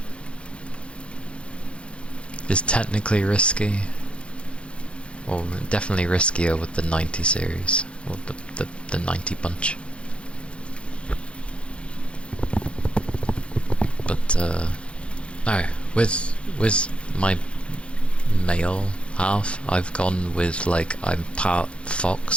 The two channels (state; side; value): late; right; 0.059 ms